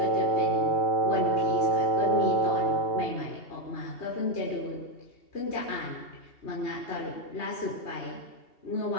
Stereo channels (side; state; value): right; late; 2.7 ms